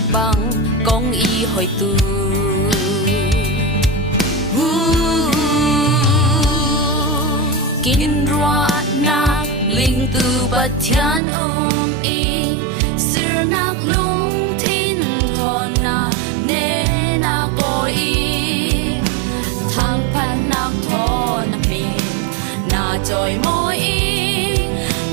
băng công y hồi tu kinh roa nạc linh tu bát thiên y sir nạc lung thiên thọ na ne na coi thang pan nạc thọ na mình na trôi môi in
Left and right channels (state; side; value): drops out; left; at 11.2 s